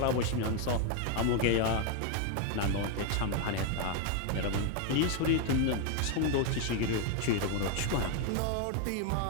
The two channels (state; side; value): different; both; correlation 0.01